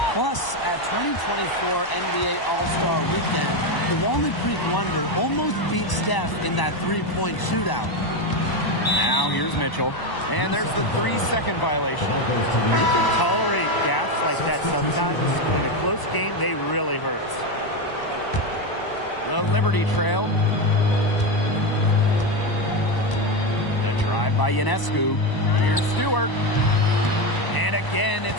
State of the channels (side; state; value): right; late; 1.0 ms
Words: Plus, at 2024 NBA All-Star Weekend, the Walnut Creek Wonder almost beat Steph in that three-point shootout. Now here's Mitchell. And there's the 3-second violation. You can tolerate gaps like that sometimes, but in a close game, they really hurt. The Liberty Trail. The drive by Ionescu. Here's Stewart. And again,